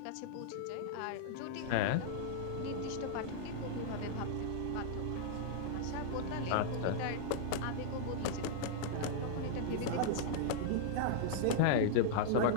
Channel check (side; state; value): both; different; correlation -0.01